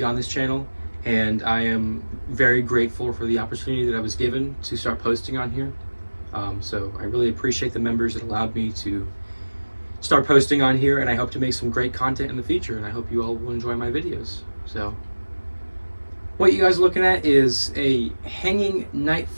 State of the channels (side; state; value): both; inverted; correlation -1.00